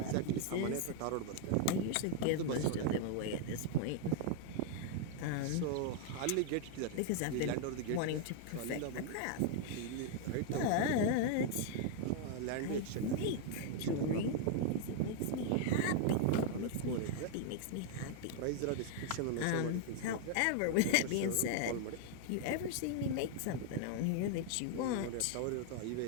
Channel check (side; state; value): both; different; correlation 0.00